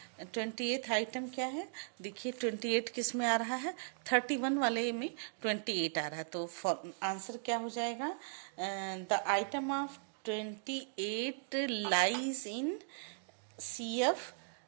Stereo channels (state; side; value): silent; left; digital silence